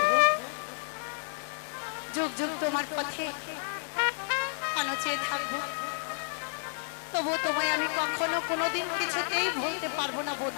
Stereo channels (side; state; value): right; silent; digital silence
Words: যুগ যুগ তোমার পথে কেন চেয়ে থাকবো, তবু তোমায় আমি কখনো কোনোদিন কিছুতেই ভুলতে পারবো না